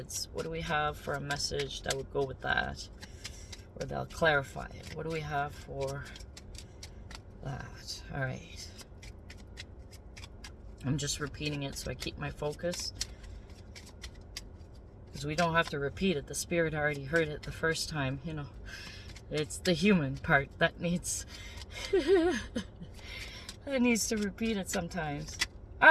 What do we have for a message that would go with that? Or they'll clarify it. What do we have for that? All right. I'm just repeating it so I keep my focus. Because we don't have to repeat it. The spirit already heard it the first time, you know. It's the human part that needs It needs to repeat it sometimes.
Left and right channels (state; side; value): identical; both; correlation 1.00